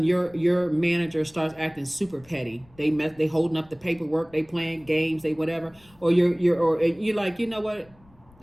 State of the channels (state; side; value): noise; left; rumble, 28 dB below the sound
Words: your manager starts acting super petty. They holding up the paperwork, they playing games, they whatever, or you're like, you know what,